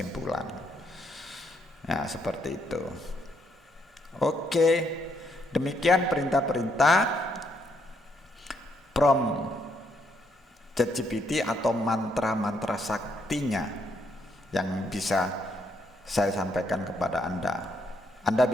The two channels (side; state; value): both; normal; correlation 0.74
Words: Nah, seperti itu. Oke, demikian perintah-perintah prompt ChatGPT atau mantra-mantra saktinya yang bisa saya sampaikan kepada Anda. Anda